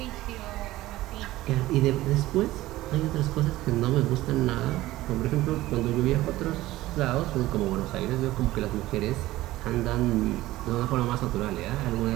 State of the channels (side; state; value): left; quieter; 16.7 dB